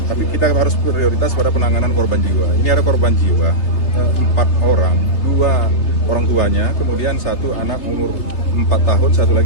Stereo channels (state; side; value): late; right; 3.4 ms